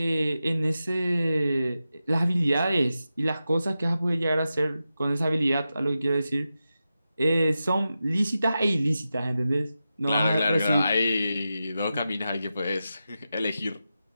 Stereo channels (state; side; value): inverted; both; correlation -0.91